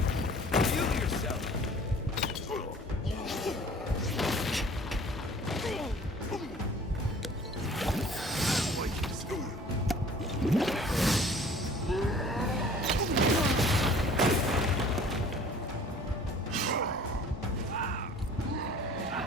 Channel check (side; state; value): both; normal; correlation 0.49